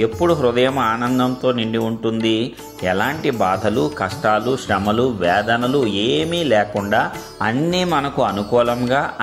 ఎప్పుడు హృదయం ఆనందంతో నిండి ఉంటుంది? ఎలాంటి బాధలు, కష్టాలు, శ్రమలు, వేదనలు ఏమీ లేకుండా అన్నీ మనకు అనుకూలంగా,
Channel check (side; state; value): both; identical; correlation 1.00